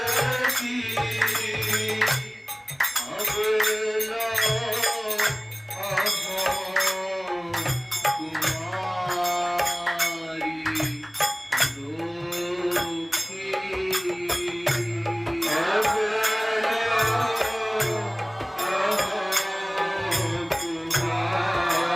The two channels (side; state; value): both; identical; correlation 1.00